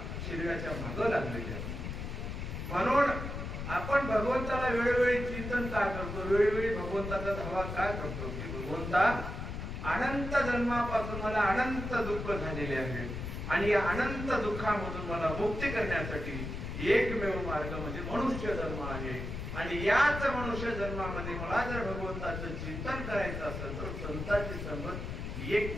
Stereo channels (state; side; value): noise; left; rumble, 6 dB below the sound